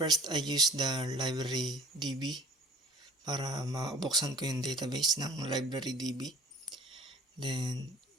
I use the library.db para mabuksan ko yung database ng library.db. Then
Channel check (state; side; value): normal; both; correlation 0.45